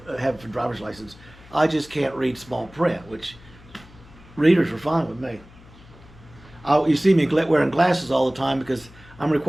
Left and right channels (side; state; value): left; noise; hum, 23 dB below the sound